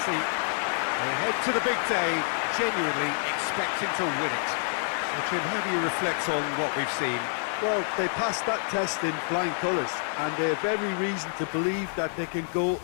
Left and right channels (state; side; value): silent; right; digital silence